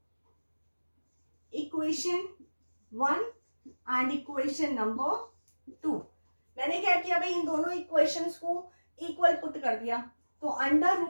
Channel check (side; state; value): both; inverted; correlation -1.00